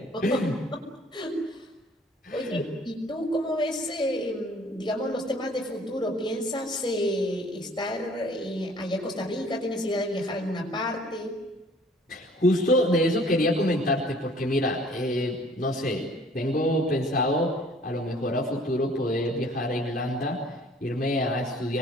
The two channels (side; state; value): both; normal; correlation 0.55